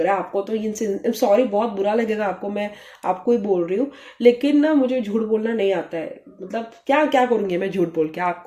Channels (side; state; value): both; identical; correlation 1.00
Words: रहा है। आपको तो इनसे सॉरी, बहुत बुरा लगेगा आपको, मैं आपको ही बोल रही हूँ, लेकिन ना मुझे झूठ बोलना नहीं आता है। मतलब क्या क्या करूँगी मैं झूठ बोल के,